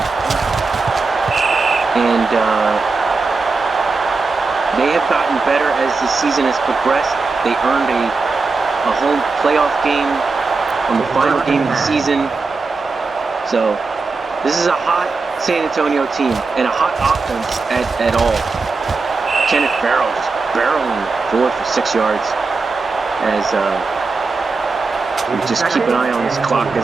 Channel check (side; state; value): left; quieter; 4.1 dB